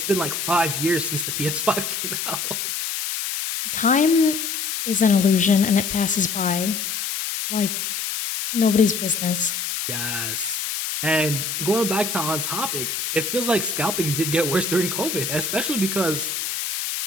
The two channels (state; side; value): noise; left; hiss, 3 dB below the sound